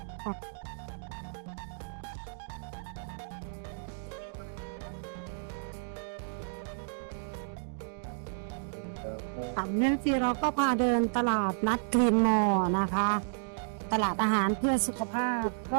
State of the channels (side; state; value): left; silent; digital silence